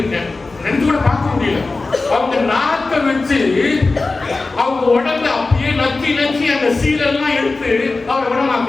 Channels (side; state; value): right; quieter; 3.6 dB